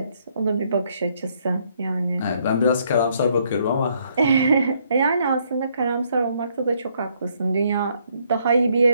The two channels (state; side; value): inverted; both; correlation -0.70